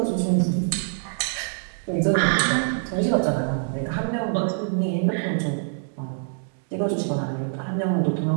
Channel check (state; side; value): silent; left; 62 dB below the other